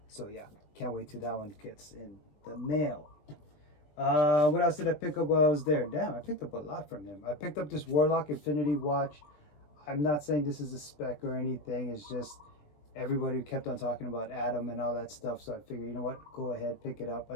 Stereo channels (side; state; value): right; late; 20 ms